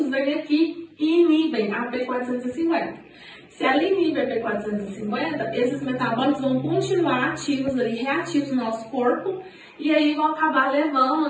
vêm aqui e inibem a P450. Se ela inibe a P450, esses metabólitos vão continuar ativos ali, reativos no nosso corpo, e aí vão acabar levando,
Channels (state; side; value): identical; both; correlation 1.00